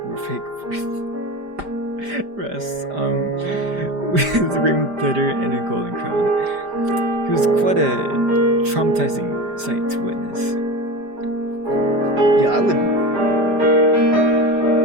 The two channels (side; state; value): left; late; 5.0 ms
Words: were fake breasts, with ring glitter and a golden crown. He was quite a traumatizing sight to witness. Yeah, I